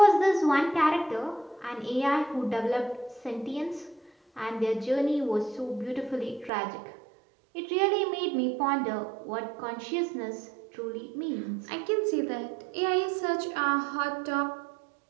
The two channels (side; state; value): left; drops out; at 6.5 s